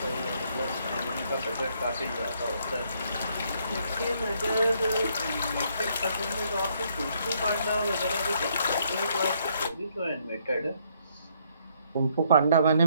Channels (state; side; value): inverted; both; correlation -0.69